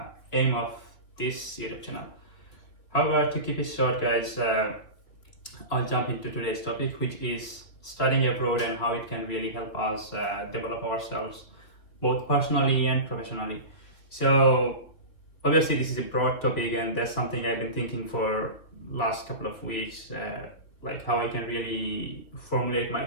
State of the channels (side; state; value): right; late; 2.6 ms